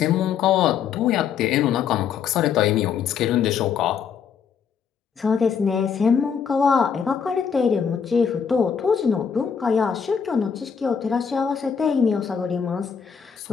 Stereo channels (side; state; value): right; quieter; 7.0 dB